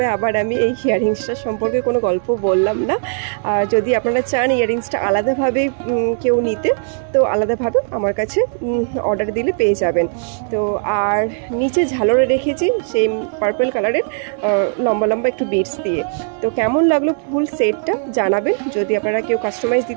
আবার আমি এই ইয়াররিংসটা সম্পর্কে কোনো গল্প বললাম না। আর যদি আপনারা চান ইয়াররিংসটা আলাদাভাবে কেউ নিতে, তো আলাদাভাবে আমার কাছে অর্ডার দিলে পেয়ে যাবেন। তো আর নিচে ঝালরে রেখেছি সেই পার্পল কালারের লম্বা লম্বা একটু বিটস দিয়ে। তো কেমন লাগলো ফুল সেটটা জানাবেন, যদি আপনারা কেউ কাস্টমাইজ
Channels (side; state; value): left; silent; 67 dB below the other